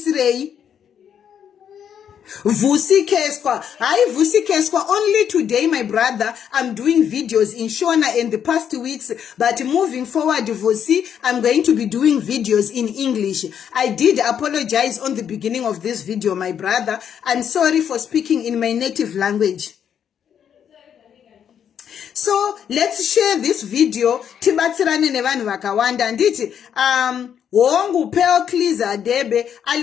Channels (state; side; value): quieter; right; 8.6 dB